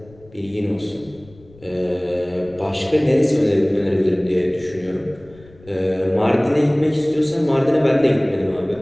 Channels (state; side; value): noise; left; rumble, 25 dB below the sound